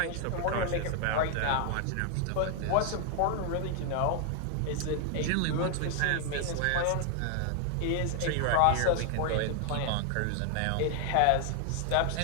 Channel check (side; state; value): both; different; correlation 0.00